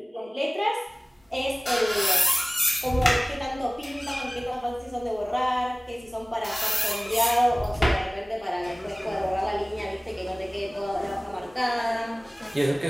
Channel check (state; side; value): normal; both; correlation 0.98